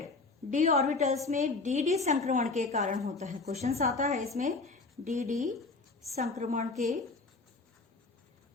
डी ऑर्बिटल्स में डी संक्रमण के कारण होता है। क्वेश्चंस आता है इसमें डी संक्रमण के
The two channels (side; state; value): right; quieter; 3.7 dB